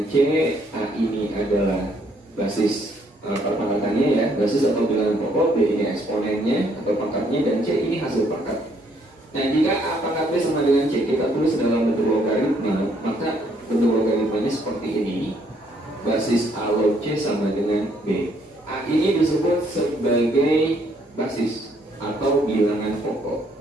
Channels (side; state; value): both; normal; correlation 0.68